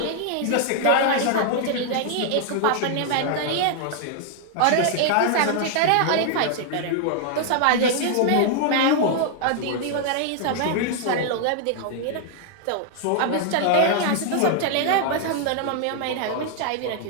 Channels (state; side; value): different; both; correlation 0.00